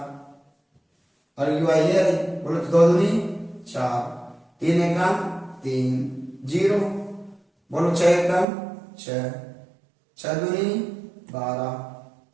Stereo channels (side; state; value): left; drops out; at 8.5 s